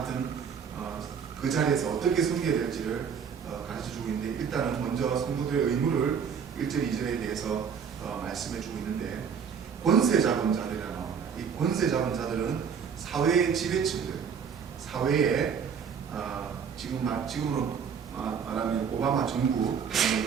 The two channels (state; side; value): quieter; left; 6.9 dB